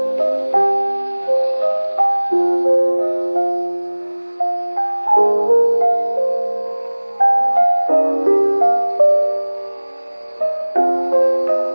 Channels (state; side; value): inverted; both; correlation -1.00